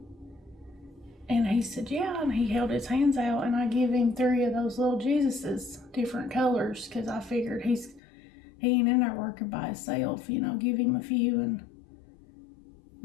And he said, yeah, and he held his hands out, and I give him 3 of those little Jesuses, different colors, because I figured he ain't in there working by himself, you know, give him a few, and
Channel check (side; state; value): right; drops out; at 8.0 s